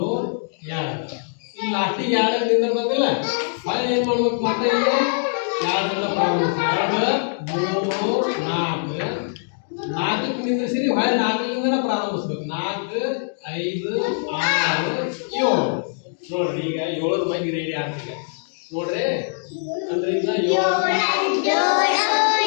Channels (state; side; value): silent; right; digital silence